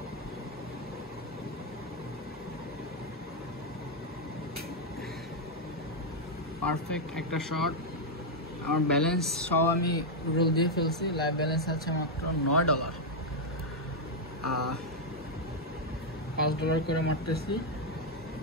Perfect একটা শট। আমার ব্যালেন্স সব আমি রোল দিয়ে ফেলছি, লাইভ ব্যালেন্স আছে মাত্র $9। $5 করে মারতেছি।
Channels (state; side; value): normal; both; correlation 0.00